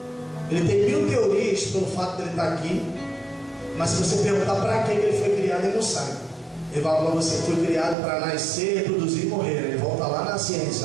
Ele tem 1000 teorias pelo fato de ele estar aqui, mas se você perguntar para que ele foi criado, ele não sabe. Ele vai falar: você foi criado para nascer, reproduzir e morrer. Ele volta lá na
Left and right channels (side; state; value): left; drops out; at 8.0 s